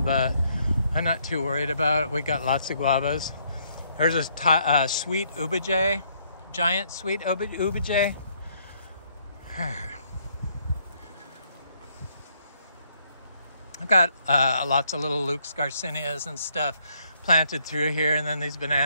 but I'm not too worried about it. We got lots of guavas. There's a sweet ubijay, giant sweet ubijay. I've got lots of little Luke's Garcinias and stuff planted through here, and then these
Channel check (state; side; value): inverted; both; correlation -0.69